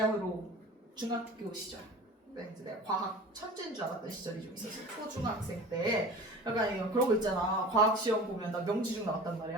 중학교 시절, 이제 내가 과학 천재인 줄 알았던 시절이 좀 있었어. 초중학생 때 약간 그런 거 있잖아. 과학 시험 보면 나 명지중 나왔단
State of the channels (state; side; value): normal; both; correlation 0.38